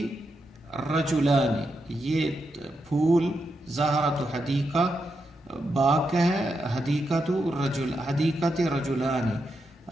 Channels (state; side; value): normal; both; correlation 0.84